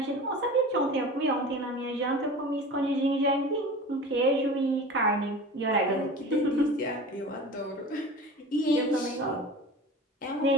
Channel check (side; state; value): both; normal; correlation 0.36